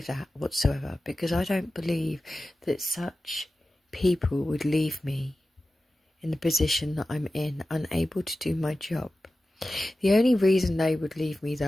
that whatsoever, because I don't believe that such people would leave me in the position that I'm in, unable to do my job. The only reason they would leave me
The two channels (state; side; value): normal; both; correlation 0.94